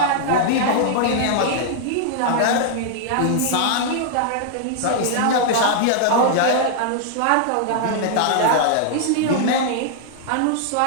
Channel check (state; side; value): different; both; correlation -0.01